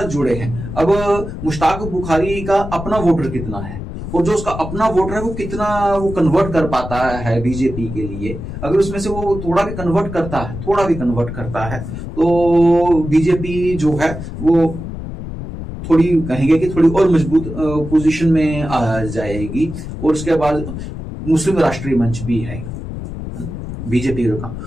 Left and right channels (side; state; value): left; noise; rumble, 8 dB below the sound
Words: जुड़े हैं। अब मुश्ताक बुखारी का अपना वोटर कितना है, और जो उसका अपना वोटर है वो कितना वो कन्वर्ट कर पाता है बीजेपी के लिए, अगर उसमें से वो थोड़ा भी कन्वर्ट करता है तो बीजेपी जो है वो थोड़ी कहेंगे कि थोड़ी और मजबूत पोजीशन में आ जाएगी। और उसके बाद मुस्लिम राष्ट्रीय मंच भी है बीजेपी का,